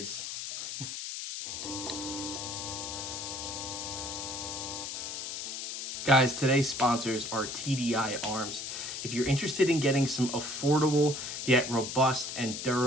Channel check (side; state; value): left; noise; hiss, 6 dB below the sound